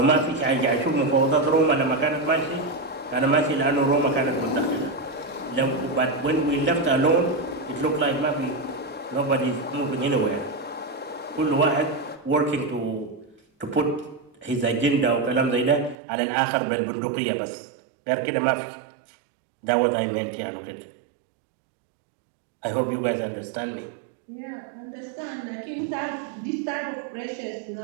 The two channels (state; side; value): drops out; left; at 16.0 s